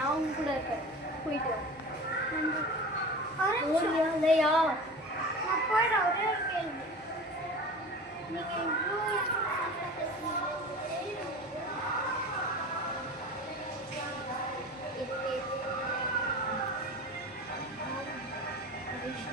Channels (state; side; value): normal; both; correlation 0.35